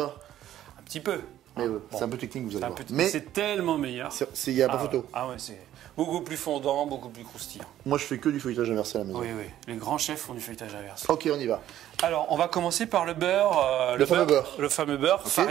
Un petit peu. Mais Bon. c'est un peu technique, vous allez voir. Mais c'est tellement meilleur. Il n'y a pas photo. Ah ouais, c'est beaucoup plus fondant, beaucoup plus croustillant. Moi, je fais que du feuilletage inversé à la maison. Oui, oui. Les grands chefs font du feuilletage inversé. Ok, on y va. Alors, on va commencer par le beurre. Le fameux beurre. Le fameux beurre, Okay.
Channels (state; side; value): quieter; left; 12.3 dB